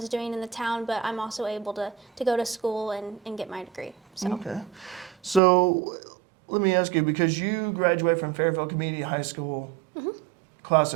doing in the town, but I'm also able to go to school and get my degree. So. Okay. So let me ask you, because you graduated from Fairfield Community High School, class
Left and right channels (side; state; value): left; drops out; at 5.4 s